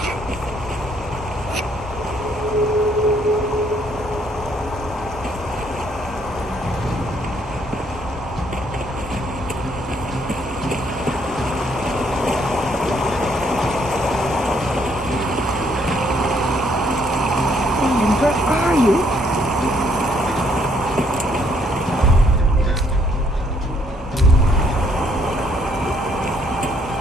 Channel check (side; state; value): both; normal; correlation 0.68